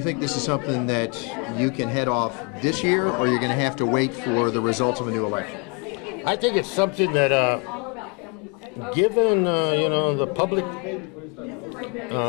think this is something that you can head off this year, or you're going to have to wait for the results of a new election? I think it's something that, given the public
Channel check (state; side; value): quieter; right; 32.3 dB